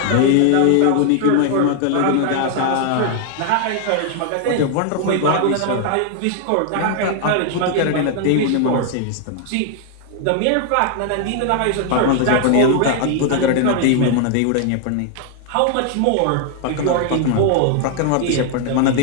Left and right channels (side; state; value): both; different; correlation 0.00